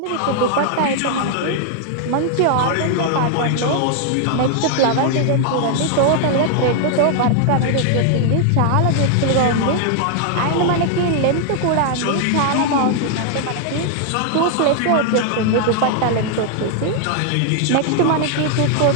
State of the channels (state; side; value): different; both; correlation 0.00